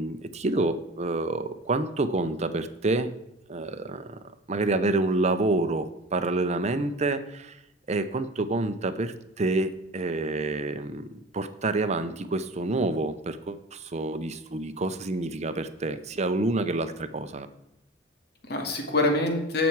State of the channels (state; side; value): normal; both; correlation 0.35